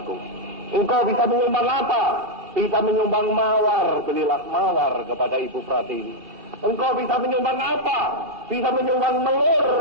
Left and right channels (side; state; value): left; late; 2.5 ms